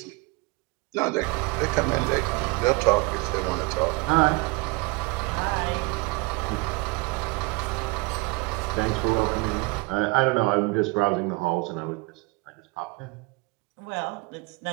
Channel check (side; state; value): left; quieter; 26.4 dB